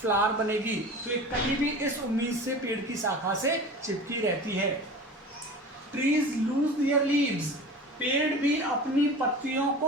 बनेगी। तो एक कली भी इस उम्मीद से पेड़ की शाखा से चिपकी रहती है। ट्रीज लूज देयर लीव्स, पेड़ भी अपनी पत्तियों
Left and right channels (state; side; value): normal; both; correlation 0.36